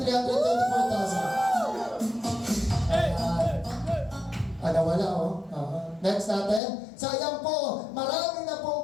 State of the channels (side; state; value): right; drops out; at 6.6 s